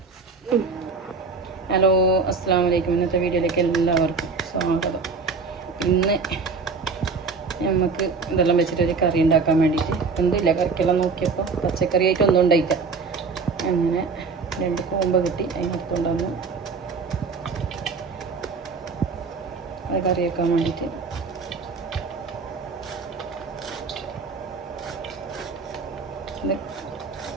ഹലോ, അസ്സലാമു അലൈക്കും. ഇന്നത്തെ വീഡിയോയിലേക്ക് എല്ലാവർക്കും സ്വാഗതം. ഇന്ന് നമുക്ക് ഇതെല്ലാം വെച്ചിട്ടൊരു കറി ഉണ്ടാക്കാൻ വേണ്ടിയിട്ട് എന്തില്ല കറിക്കെല്ലാം നോക്കിയപ്പോൾ പച്ചക്കറിയായിട്ട് ഒന്നും ഉണ്ടായിക്കാം. അങ്ങനെ 2 കൂമ്പ കിട്ടി, അതിനടുത്തുകൊണ്ട് വന്നു അത് കറി വെക്കാൻ വേണ്ടിയിട്ട്. ഇത്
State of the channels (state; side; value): quieter; left; 4.7 dB